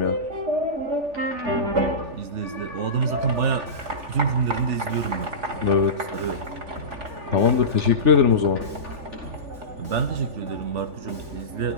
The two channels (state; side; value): late; left; 3.4 ms